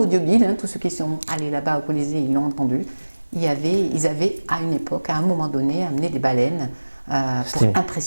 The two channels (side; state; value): both; inverted; correlation -1.00